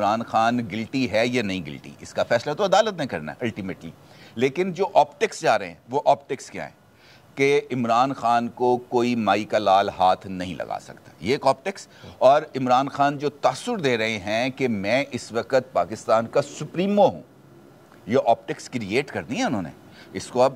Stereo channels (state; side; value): identical; both; correlation 1.00